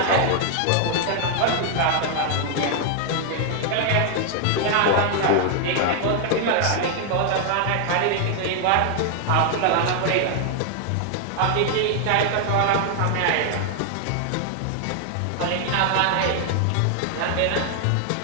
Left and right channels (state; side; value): different; both; correlation 0.00